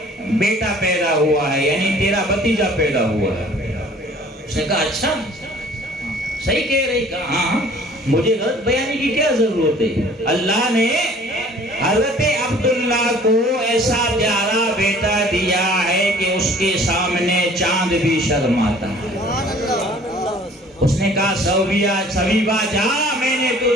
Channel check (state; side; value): normal; both; correlation 0.51